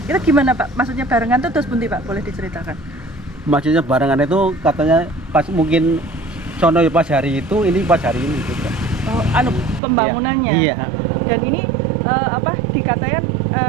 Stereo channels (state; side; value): drops out; left; at 9.8 s